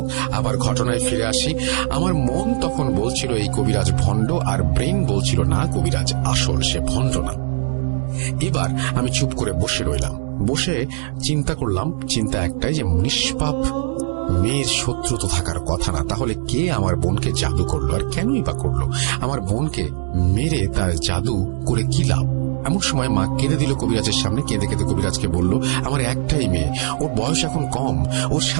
আবার ঘটনায় ফিরে আসি। আমার মন তখন বলছিল এই কবিরাজ ভণ্ড, আর ব্রেন বলছিল না, কবিরাজ আসল, সে ভণ্ড না। এবার আমি চুপ করে বসে রইলাম। বসে চিন্তা করলাম, চিন্তা একটাই যে নিষ্পাপ মেয়ের শত্রু তো থাকার কথা না, তাহলে কে আমার বোনকে জাদু করলো, আর কেনই বা করলো? আমার বোনকে মেরে তার জাদু করে কি লাভ? এমন সময় মা কেঁদে দিল কবিরাজের সামনে। কেঁদে কেঁদে কবিরাজকে বলল, আমার একটাই মেয়ে, ওর বয়স এখন কম, ওর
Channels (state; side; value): silent; left; digital silence